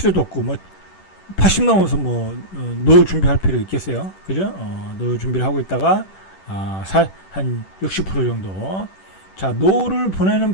없고 80 넘어서 노후 준비할 필요 있겠어요. 그죠? 노후 준비를 하고 있다가 한 60% 정도. 자, 노후를 보내는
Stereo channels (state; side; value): late; right; 10 ms